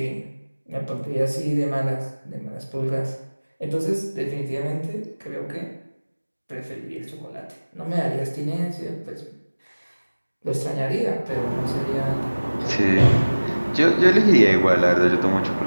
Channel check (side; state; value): both; inverted; correlation -1.00